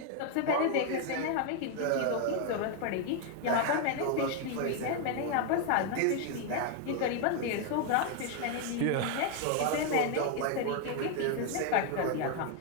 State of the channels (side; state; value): both; different; correlation 0.01